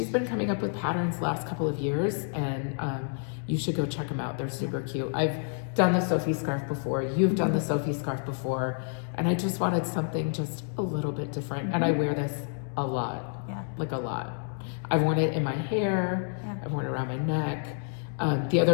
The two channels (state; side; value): silent; right; 58 dB below the other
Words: been coming up with patterns the last couple of years, and you should go check them out. They're super cute. I've done the Sophie scarf before. You've done the Sophie scarf before, and I just wanted something just a little bit different, and I wear this a lot. Yeah. Like a lot. I've worn it in my hair. Yeah. I've worn it around my neck. The